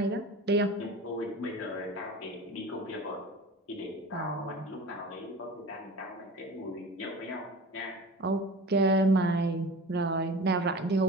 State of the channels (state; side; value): normal; both; correlation 0.37